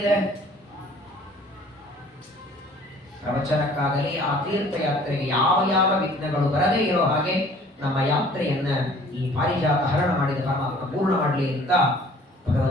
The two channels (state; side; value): normal; both; correlation 0.53